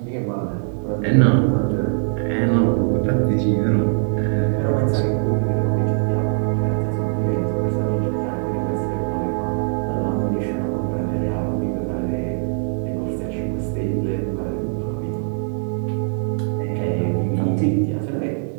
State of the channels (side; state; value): left; silent; 59 dB below the other